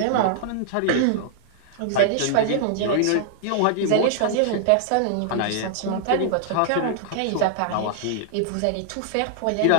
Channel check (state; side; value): different; both; correlation -0.01